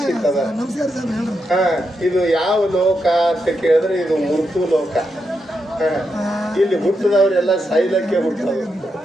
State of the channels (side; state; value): both; normal; correlation 0.84